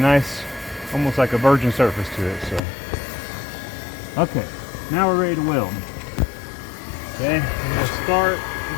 almost like a virgin surface to it. So, okay, now we're ready to weld. Okay, I'm going to start. You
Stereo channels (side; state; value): right; drops out; at 2.6 s